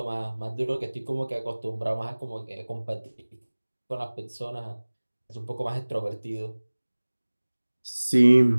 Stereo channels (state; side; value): inverted; both; correlation -1.00